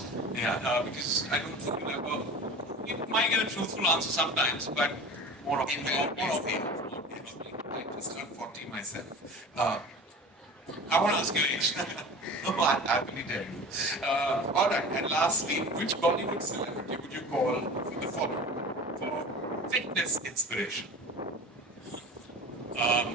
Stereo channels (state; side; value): normal; both; correlation 0.36